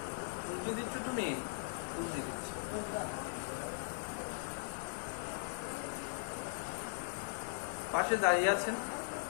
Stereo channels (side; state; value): right; silent; digital silence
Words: তুলসী দিচ্ছ তুমি? তুলসী দিচ্ছ। পাশে দাঁড়িয়ে আছেন,